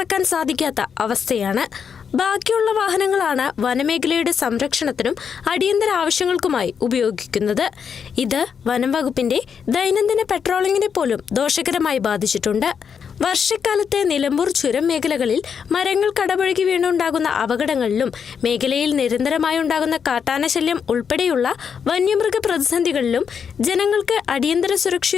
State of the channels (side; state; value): right; quieter; 6.9 dB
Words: സാധിക്കാത്ത അവസ്ഥയാണ്. ബാക്കിയുള്ള വാഹനങ്ങളാണ് വനമേഖലയുടെ സംരക്ഷണത്തിനും അടിയന്തര ആവശ്യങ്ങൾക്കുമായി ഉപയോഗിക്കുന്നത്. ഇത് വനം വകുപ്പിന്റെ ദൈനംദിന പെട്രോളിങ്ങിനെ പോലും ദോഷകരമായി ബാധിച്ചിട്ടുണ്ട്. വർഷക്കാലത്തെ നിലമ്പൂർ ചുരം മേഖലകളിൽ മരങ്ങൾ കടപുഴകി വീണുണ്ടാകുന്ന അപകടങ്ങളിലും മേഖലയിൽ നിരന്തരമായി ഉണ്ടാകുന്ന കാട്ടാനശല്യം ഉൾപ്പെടെയുള്ള വന്യമൃഗ പ്രതിസന്ധികളിലും ജനങ്ങൾക്ക് അടിയന്തര